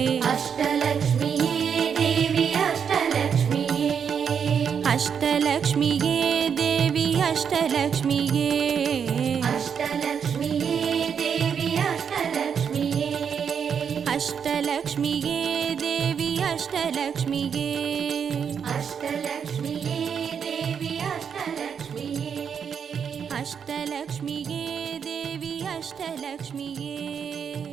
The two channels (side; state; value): left; quieter; 7.2 dB